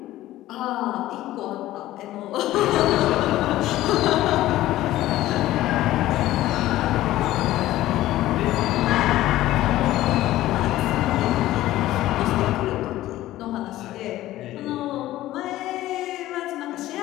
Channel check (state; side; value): quieter; right; 15.2 dB